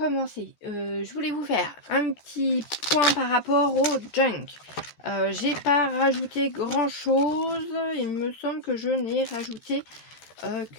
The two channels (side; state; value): right; late; 13 ms